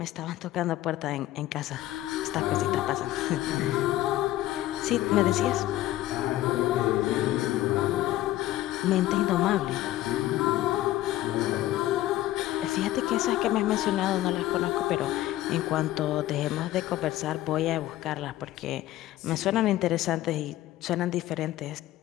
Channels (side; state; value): right; quieter; 15.0 dB